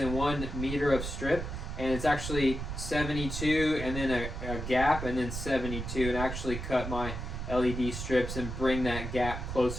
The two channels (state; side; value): noise; right; rumble, 5 dB below the sound